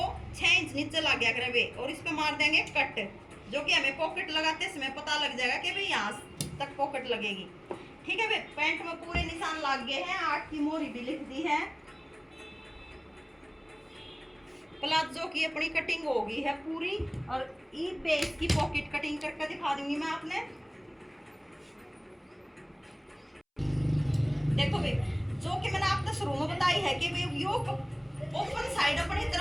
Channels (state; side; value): identical; both; correlation 1.00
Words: 6 इंच नीचे लग गया करे वे, और इस पे मार देंगे कट, जो कि हमें पॉकेट लगाते समय पता लग जाएगा कि भाई यहाँ तक पॉकेट लगेगी, ठीक है भाई। पैंट में पूरे निशान लग गए हैं, 8 की मोहरी भी लिख दी है। प्लाजो की अपनी कटिंग हो गई है पूरी, और ई बेस की पॉकेट कटिंग करके दिखा दूंगी मैं आपने। देखो भाई जो कि मैंने आपको शुरू में बताई है कि भाई यो ओपन साइड अपनी